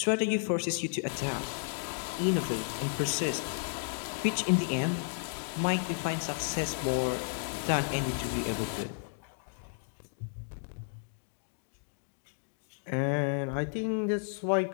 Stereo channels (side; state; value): right; silent; digital silence